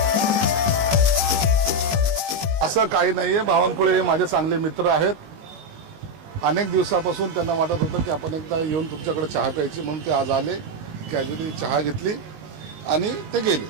असं काही नाहीये. बावनकुळे हे माझे चांगले मित्र आहेत. अनेक दिवसापासून त्यांना वाटत होतं की आपण एकदा येऊन तुमच्याकडे चहा प्यायची, म्हणून ते आज आले. कॅज्युअली चहा घेतली आणि ते गेले.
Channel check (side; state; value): left; late; 19 ms